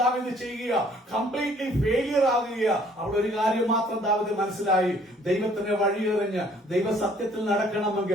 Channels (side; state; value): both; normal; correlation 0.59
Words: ദാവീദ് ചെയ്യുക, കംപ്ലീറ്റ്ലി ഫെയിലിയർ ആകുക. അവിടെ ഒരു കാര്യം മാത്രം ദാവീദ് മനസ്സിലായി, ദൈവത്തിന്റെ വഴിയെറിഞ്ഞ് ദൈവസത്യത്തിൽ